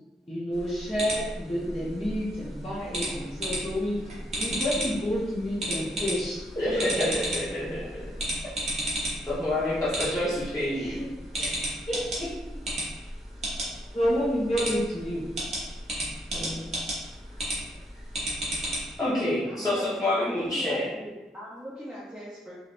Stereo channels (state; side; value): normal; both; correlation 0.72